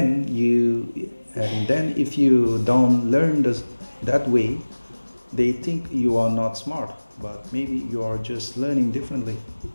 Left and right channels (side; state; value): both; inverted; correlation -1.00